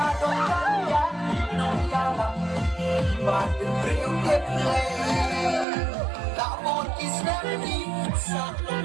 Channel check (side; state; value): left; drops out; at 5.7 s